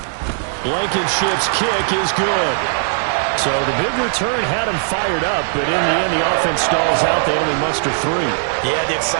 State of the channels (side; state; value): left; silent; 66 dB below the other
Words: Blankenship's kick is good. So the big return had him fired up, but in the end, the offense stalls out. They only muster 3. Yeah, the